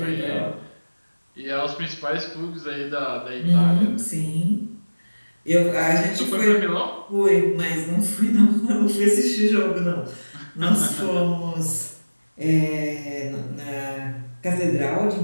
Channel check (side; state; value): both; inverted; correlation -1.00